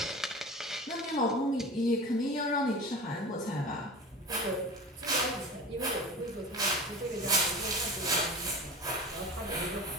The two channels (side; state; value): both; normal; correlation 0.34